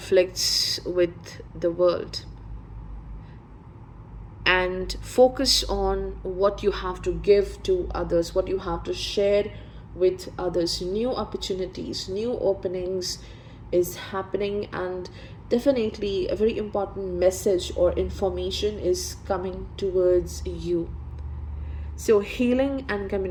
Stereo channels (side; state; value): both; identical; correlation 1.00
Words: with the world, and focus on what you have to give to others, what you have to share with others. New opportunities, new openings is happening, and definitely a very important message or information is coming towards you. So healing and